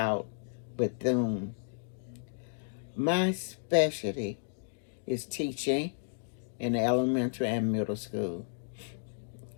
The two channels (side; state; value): right; silent; digital silence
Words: Bethune. My specialty is teaching in elementary and middle school.